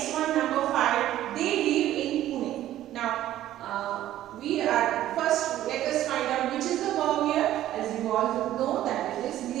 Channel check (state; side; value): quieter; left; 13.2 dB